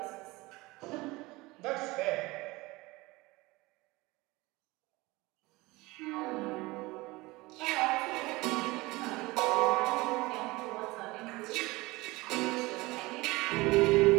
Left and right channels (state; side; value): quieter; left; 21.8 dB